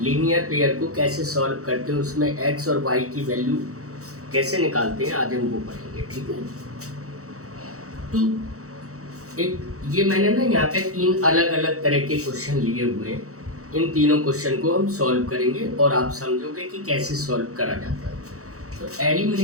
लीनियर पेयर को कैसे सॉल्व करते हैं, उसमें एक्स और वाई की वैल्यू कैसे निकालते हैं, आज हम वो पढ़ेंगे। ठीक है। तो एक ये मैंने ना यहाँ पे 3 अलग अलग तरह के क्वेश्चन लिए हुए हैं। इन तीनों क्वेश्चन को हम सॉल्व करेंगे और आप समझोगे कि कैसे सॉल्व करा जाता है। तो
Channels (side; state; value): left; late; 0.65 ms